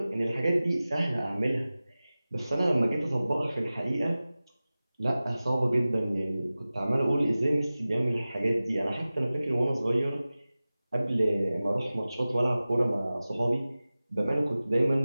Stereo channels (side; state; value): both; inverted; correlation -0.97